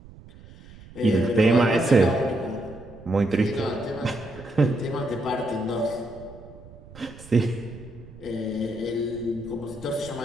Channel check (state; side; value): noise; right; rumble, 19 dB below the sound